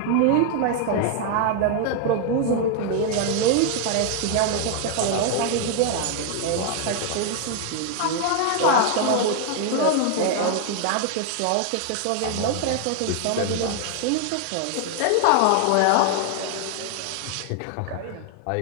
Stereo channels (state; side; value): different; both; correlation 0.00